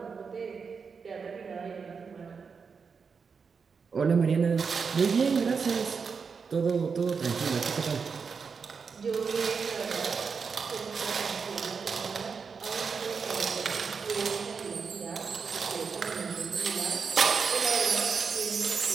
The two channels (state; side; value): quieter; left; 5.6 dB